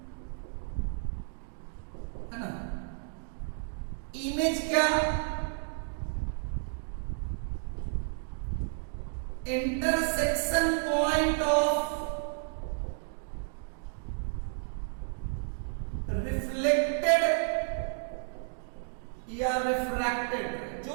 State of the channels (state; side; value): silent; left; digital silence